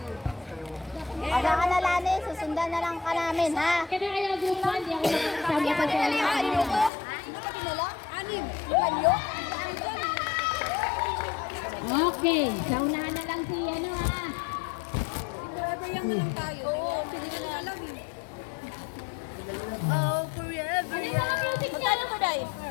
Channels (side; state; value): right; drops out; at 6.9 s